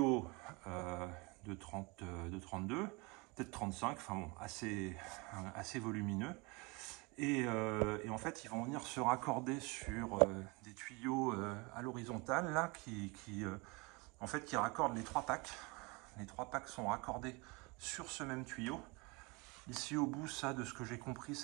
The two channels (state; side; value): quieter; left; 27.5 dB